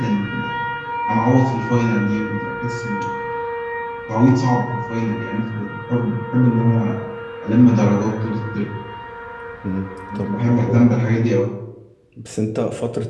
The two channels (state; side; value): identical; both; correlation 1.00